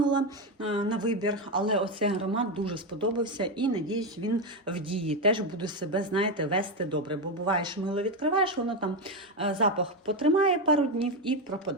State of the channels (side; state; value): both; normal; correlation 0.10